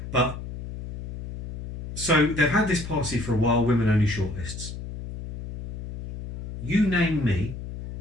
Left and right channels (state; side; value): noise; left; hum, 8 dB below the sound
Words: But, so they've had this policy for a while, women-only shortlists. You name me